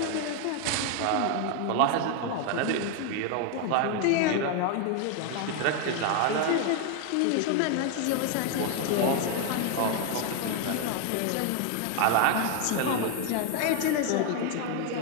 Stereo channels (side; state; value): both; different; correlation 0.01